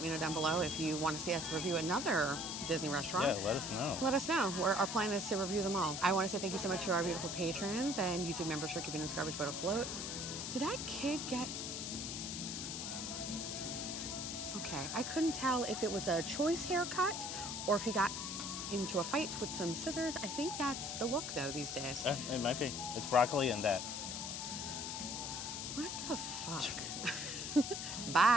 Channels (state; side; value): noise; left; hiss, 4 dB below the sound